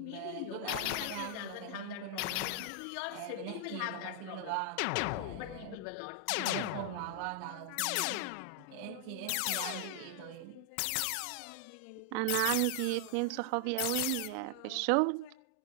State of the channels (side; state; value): both; different; correlation 0.00